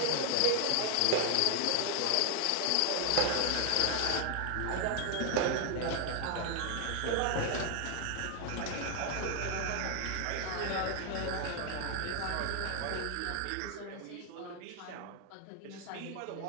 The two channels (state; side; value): different; both; correlation 0.00